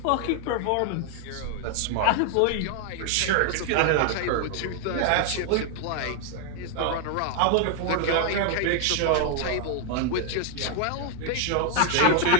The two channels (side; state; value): both; different; correlation 0.00